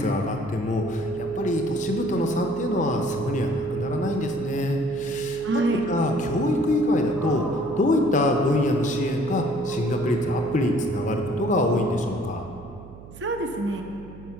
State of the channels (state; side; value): noise; right; hum, 17 dB below the sound